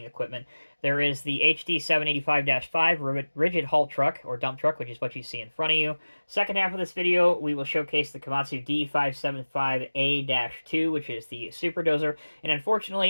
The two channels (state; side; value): inverted; both; correlation -1.00